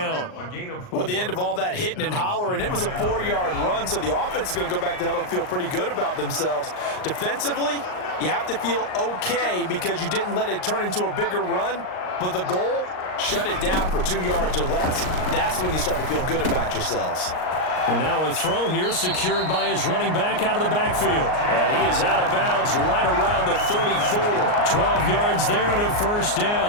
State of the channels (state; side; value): late; right; 38 ms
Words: Well, at the end of all that hitting and hollering, it was a 4-yard run, so the offense is going to go back to huddle and feel pretty good about themselves. Defensively, you have to feel okay because you didn't let it turn into a bigger run, but the goal, shut it down for 2 yards or less. That's when you start to feel good about yourselves. And now a throw here secured by his running back out of the backfield. And he is out of bounds right around the 34. 12 yards there and a 1st